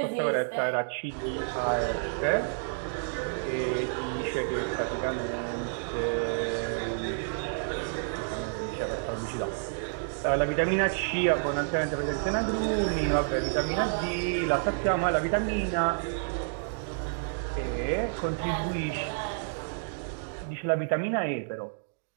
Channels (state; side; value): silent; left; digital silence